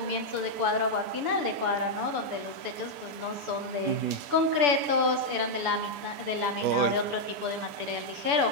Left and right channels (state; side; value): late; left; 6.9 ms